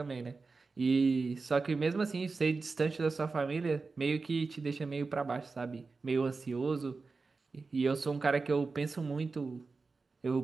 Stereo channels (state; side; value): quieter; left; 4.2 dB